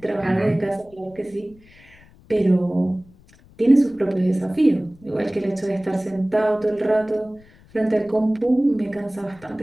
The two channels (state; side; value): noise; left; rumble, 27 dB below the sound